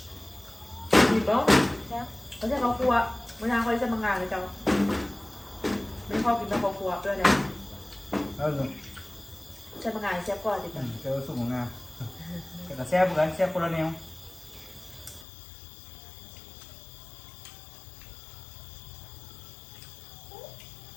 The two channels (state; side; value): drops out; right; at 15.2 s